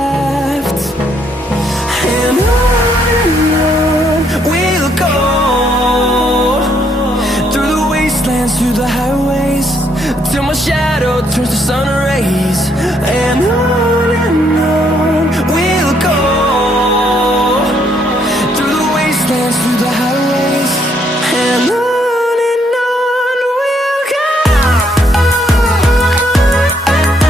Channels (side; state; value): both; normal; correlation 0.71